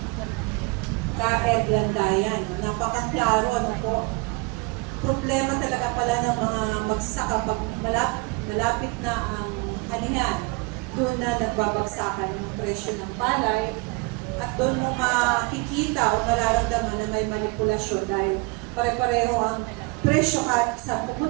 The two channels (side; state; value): left; quieter; 27.6 dB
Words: Ka-Ed Landayan, napakaklaro po. Problema talaga pala ng mga magsasaka pag malapit na ang anihan, doon na nagbabagsakan yung presyo ng palay at doon mo makikita o mararamdaman na may manipulasyon dahil pare-pareho ang presyo kahit sa